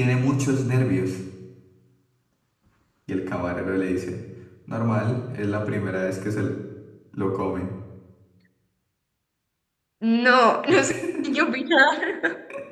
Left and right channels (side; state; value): both; identical; correlation 1.00